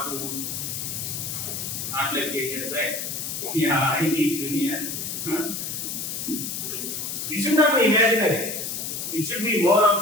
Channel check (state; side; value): noise; left; hiss, 4 dB below the sound